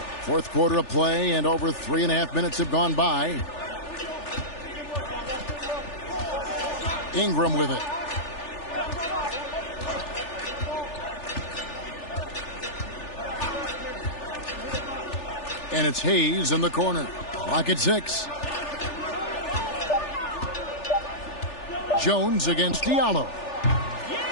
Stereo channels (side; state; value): right; late; 3.4 ms